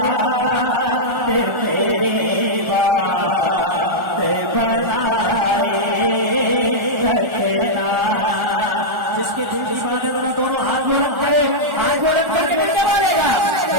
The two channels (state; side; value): late; left; 1.4 ms